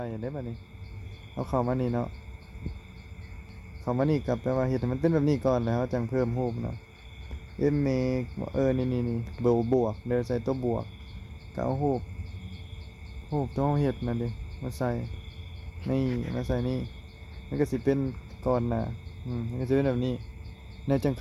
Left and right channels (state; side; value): identical; both; correlation 1.00